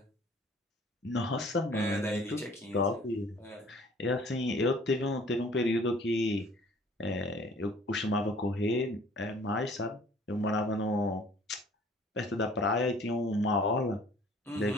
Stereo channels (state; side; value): normal; both; correlation 0.53